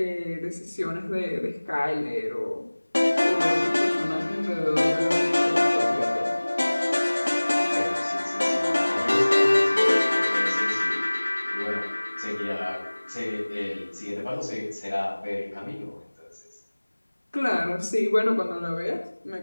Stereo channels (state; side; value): inverted; both; correlation -1.00